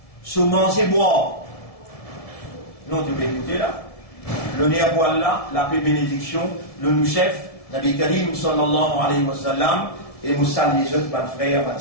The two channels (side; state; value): right; late; 1.7 ms